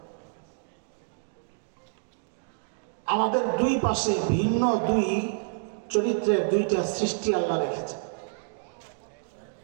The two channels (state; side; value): silent; left; digital silence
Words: আমাদের দুই পাশে ভিন্ন দুই চরিত্রের দুইটা সৃষ্টি আল্লাহ রেখেছে।